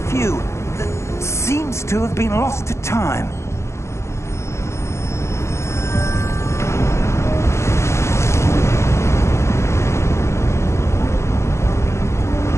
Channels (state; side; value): late; right; 0.13 ms